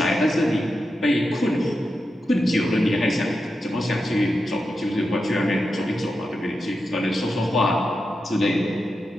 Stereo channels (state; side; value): normal; both; correlation 0.89